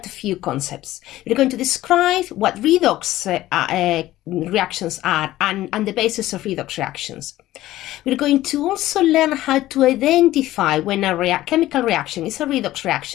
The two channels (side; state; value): right; quieter; 15.3 dB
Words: a few concepts. We're going to describe what redox reactions are and the basis of redox reactions. We're going to also learn how to identify when a chemical reaction is a redox